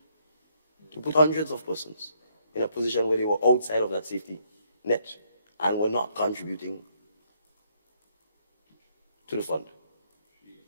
to put hundreds of persons in a position where they were outside of that safety net and were not contributing to the fund.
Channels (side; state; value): both; inverted; correlation -0.70